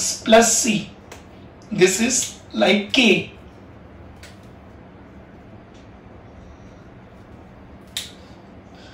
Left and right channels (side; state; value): both; identical; correlation 1.00